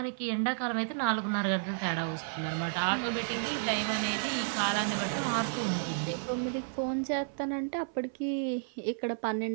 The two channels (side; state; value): left; silent; 55 dB below the other